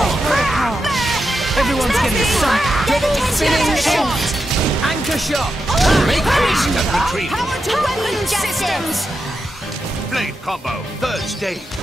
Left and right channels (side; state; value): both; normal; correlation 0.87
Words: Everyone's getting some double spinning shot! Anchor shot! Make haste and retreat! Power to weapon systems! Blade combo, third stage.